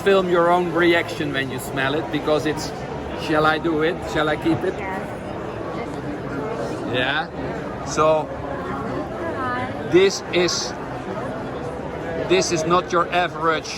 your own reaction when you smell it, because it's, shall I do it? Shall I keep it? Yeah. So this is not your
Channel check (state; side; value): identical; both; correlation 1.00